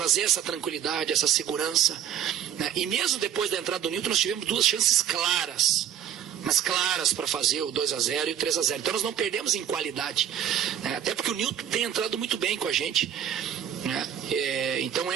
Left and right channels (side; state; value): left; quieter; 9.7 dB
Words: essa tranquilidade, essa segurança, né? E mesmo depois da entrada do Newton, nós tivemos 2 chances claras, mas claras, para fazer o 2-0 e o 3-0. Então nós não perdemos em qualidade, né? Até porque o Newton tem entrado muito bem com a gente, né? Então